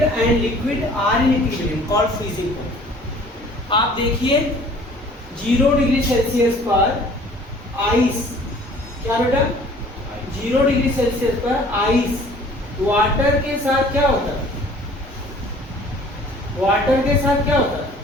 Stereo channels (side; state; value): both; normal; correlation 0.51